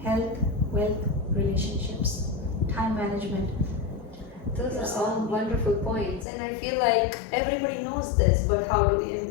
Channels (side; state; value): right; drops out; at 6.2 s